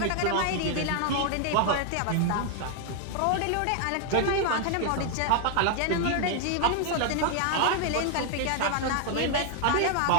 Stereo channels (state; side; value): different; both; correlation 0.00